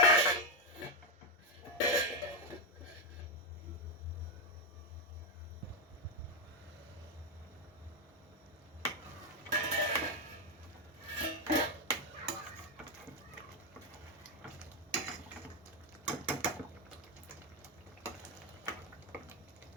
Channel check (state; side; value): normal; both; correlation 0.04